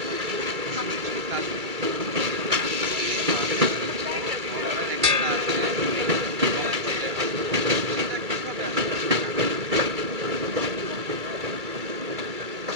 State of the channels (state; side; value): late; left; 2.3 ms